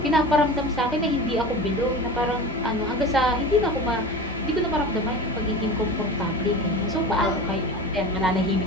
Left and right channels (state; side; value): normal; both; correlation 0.32